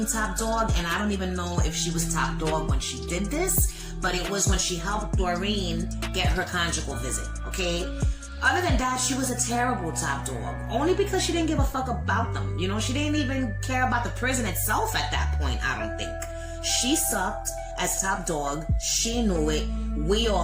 top dog, and I don't even know if she was top dog when she did this, but it was when she helped Doreen get her conjugal visit, okay? Other than that, she was a terrible top dog, only because she didn't give a fuck about them. You know, she didn't even care about the prison itself at that point, I don't think. She sucked as top dog, she knew it, we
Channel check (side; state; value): both; identical; correlation 1.00